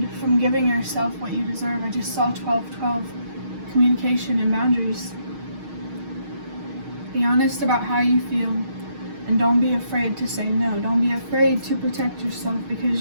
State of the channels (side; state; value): left; late; 6.4 ms